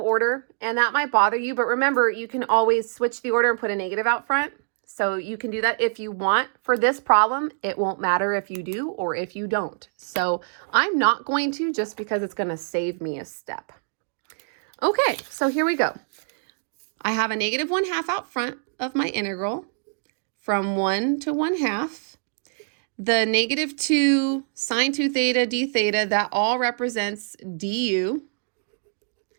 and that might bother you, but remember, you can always switch the order and put a negative out front. So you can do that if you want. For this problem, it won't matter if you do or if you don't. So I'm not going to, just because it's going to save me a step. Okay, so here we go. I have a negative 1/2 out front of my integral from 1 to 1/2. The negative 2 sine 2 theta d theta, that all represents du.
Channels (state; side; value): silent; left; digital silence